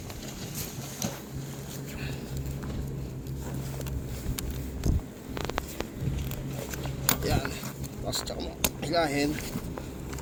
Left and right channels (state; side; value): identical; both; correlation 1.00